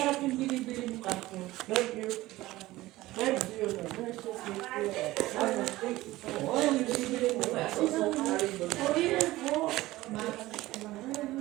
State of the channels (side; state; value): left; quieter; 17.6 dB